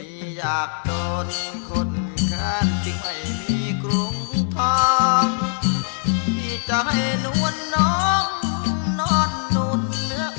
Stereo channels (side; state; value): right; silent; digital silence